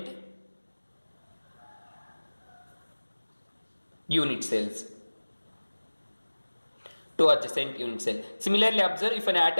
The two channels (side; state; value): both; inverted; correlation -1.00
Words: unit cells. Two adjacent unit cell. Similarly, observe if an